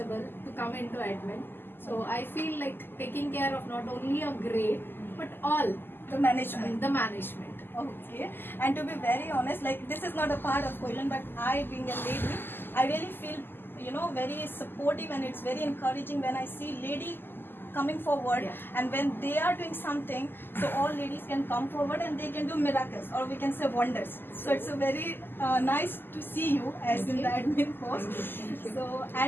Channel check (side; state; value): right; late; 0.098 ms